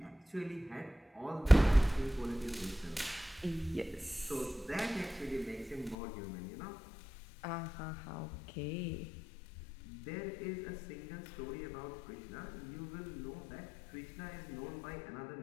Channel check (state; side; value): drops out; right; at 6.0 s